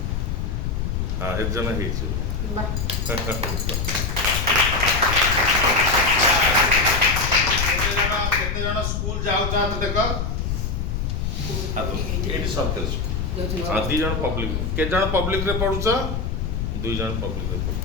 ହଁ ଏକ ଜଣ ହେଇଛି। କେତେ ଜଣ ସ୍କୁଲ ଯାଉଛ ହାତ ଦେଖ? ଏଇଠି ସରକାରୀ ସ୍କୁଲ। हाँ 2 जन पब्लिक के जन पब्लिक रे पढुछ 2 जन पब्लिक रे पढु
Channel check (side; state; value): left; noise; rumble, 1 dB below the sound